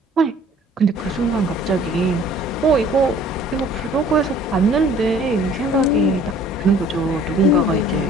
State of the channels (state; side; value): normal; both; correlation 0.54